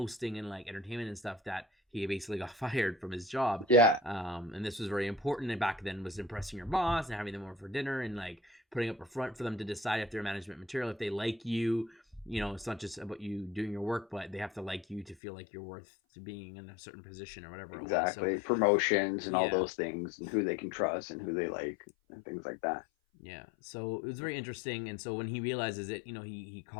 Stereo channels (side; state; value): right; drops out; at 15.2 s